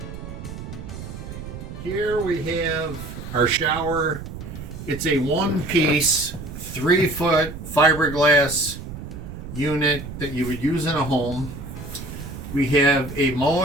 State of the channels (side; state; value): right; noise; rumble, 10 dB below the sound